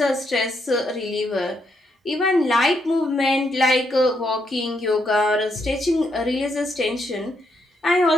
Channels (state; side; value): normal; both; correlation 0.77